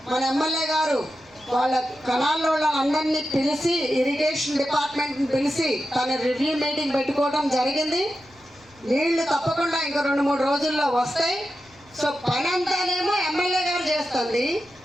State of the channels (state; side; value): noise; left; rumble, 29 dB below the sound